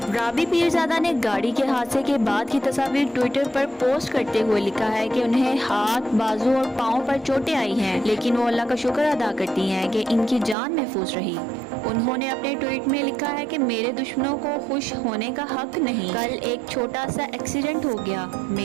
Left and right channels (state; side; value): drops out; left; at 10.6 s